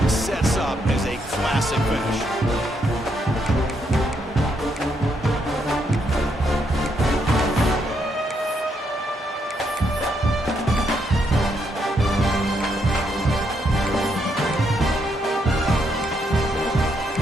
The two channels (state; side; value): normal; both; correlation 0.76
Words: sets up as a classic finish.